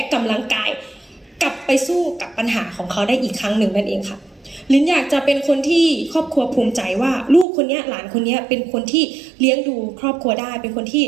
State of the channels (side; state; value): left; drops out; at 7.5 s